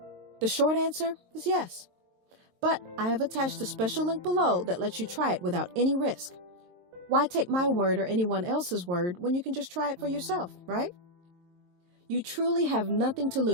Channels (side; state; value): left; late; 23 ms